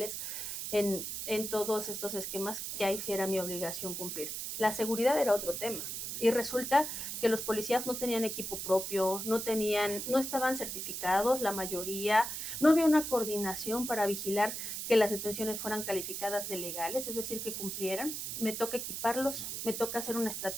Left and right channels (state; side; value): noise; right; hiss, 5 dB below the sound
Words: en todos estos esquemas que ahí sí era mi obligación cumplir. La seguridad era otro tema. Y resulta que los policías no tenían equipo propio, no estaban certificados, la mayoría, no había una coordinación para vigilar que las detenciones fueran calificadas de legales, es decir, que cumplieran. Me toca equiparlos, me toca hacer una